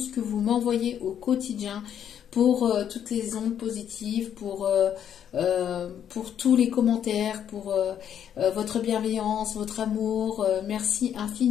que vous m'envoyez au quotidien, pour toutes les ondes positives, pour tous les commentaires, pour votre bienveillance, votre amour. Merci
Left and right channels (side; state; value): right; quieter; 9.2 dB